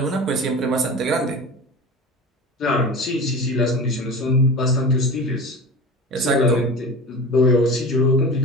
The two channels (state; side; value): normal; both; correlation 0.32